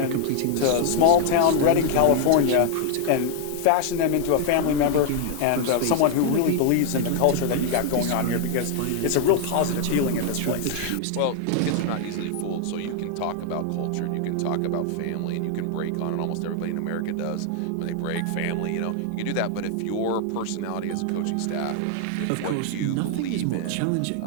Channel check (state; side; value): different; both; correlation 0.00